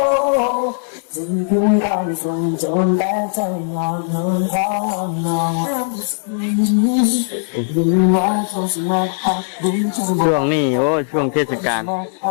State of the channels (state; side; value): silent; right; digital silence